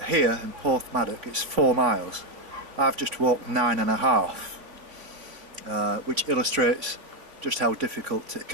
here in Porthmadog it's 4 miles. I've just walked 9.5, which illustrates just how difficult it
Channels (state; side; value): late; left; 3.5 ms